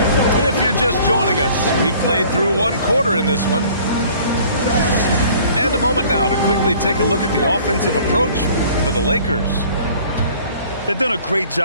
If you're just joining us, we've played through 1 quarter in this one. And a moment now to quickly take a look at the offensive approach for the Lakers. They've done a great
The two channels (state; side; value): inverted; both; correlation -0.52